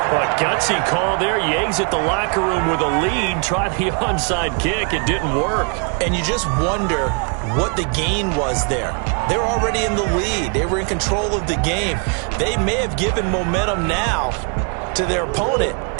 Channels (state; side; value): quieter; left; 38.3 dB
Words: But gutsy call there. Yates at the locker room with a lead. Tried the onside kick. It didn't work. And you just wonder what the gain was there. They were already in the lead. They were in control of the game. They may have given momentum now to their opponent